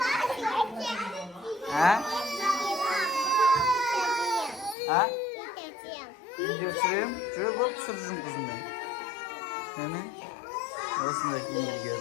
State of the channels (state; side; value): drops out; right; at 4.8 s